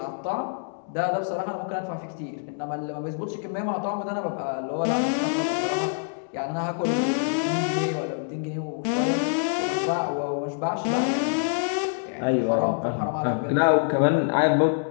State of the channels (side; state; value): right; silent; digital silence